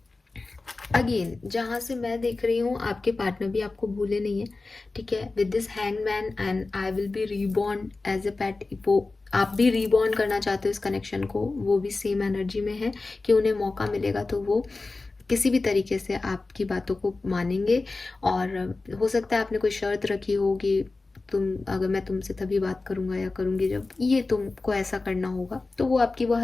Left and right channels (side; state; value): right; quieter; 3.5 dB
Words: अगेन जहाँ से मैं देख रही हूँ आपके पार्टनर भी आपको भूले नहीं है, ठीक है। With this hangman and I will be reborn as a pet, वो आप भी रीबॉर्न करना चाहते हो इस कनेक्शन को, वो भी सेम एनर्जी में है कि उन्हें मौका मिलेगा तो वो किसी भी तरीके से आपकी बातों को मानेंगे। और हो सकता है आपने कोई शर्त रखी हो कि अगर मैं तुमसे तभी बात करूंगा या करूंगी जब ये तुमको ऐसा करना होगा, तो वो आपकी वो